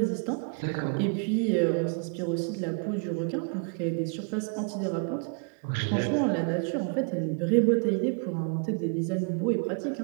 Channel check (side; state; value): left; quieter; 39.7 dB